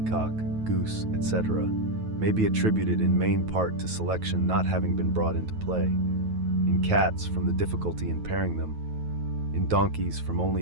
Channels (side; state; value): left; late; 9.2 ms